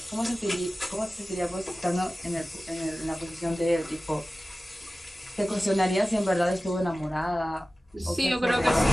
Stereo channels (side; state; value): both; normal; correlation 0.96